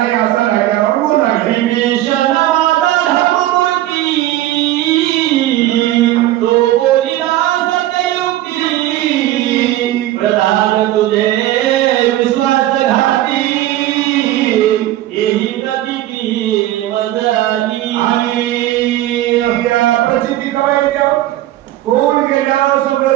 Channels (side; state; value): left; quieter; 14.5 dB